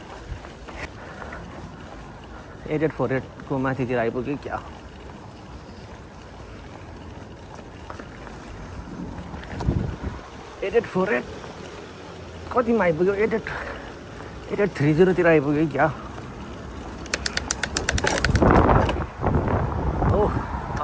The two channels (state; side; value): identical; both; correlation 1.00